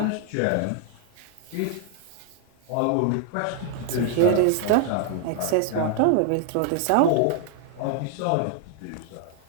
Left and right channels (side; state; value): both; different; correlation 0.00